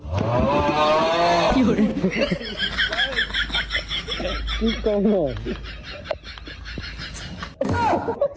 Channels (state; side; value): identical; both; correlation 1.00